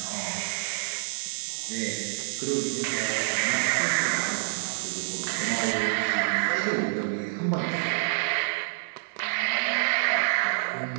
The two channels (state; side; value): silent; left; digital silence